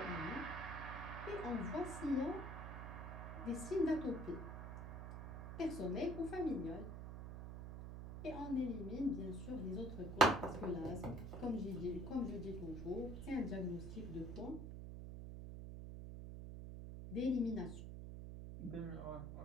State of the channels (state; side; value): noise; right; hum, 7 dB below the sound